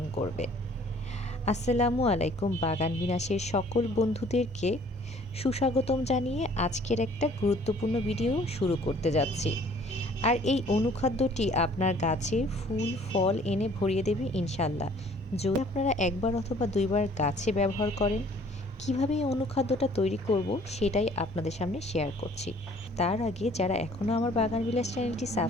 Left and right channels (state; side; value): normal; both; correlation 0.56